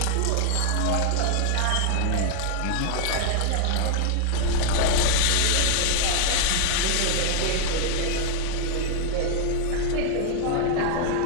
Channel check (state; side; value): different; both; correlation 0.00